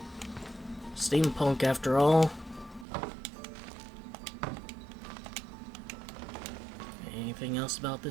Steampunk after all. Anything else about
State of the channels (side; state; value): left; drops out; at 2.9 s